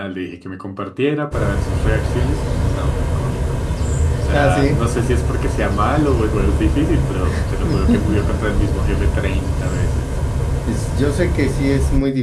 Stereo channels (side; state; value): both; identical; correlation 1.00